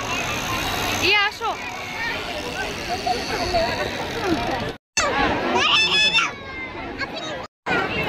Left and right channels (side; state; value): both; identical; correlation 1.00